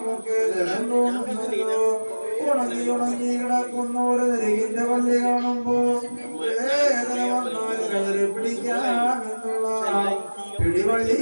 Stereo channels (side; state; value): both; inverted; correlation -1.00